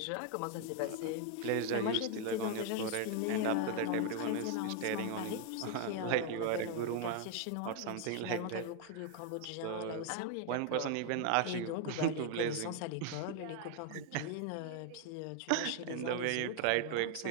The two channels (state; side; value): different; both; correlation 0.00